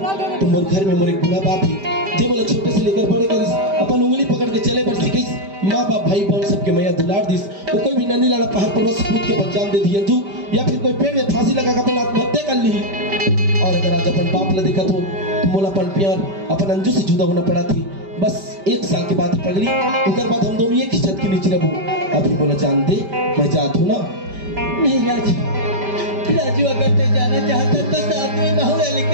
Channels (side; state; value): left; late; 5.1 ms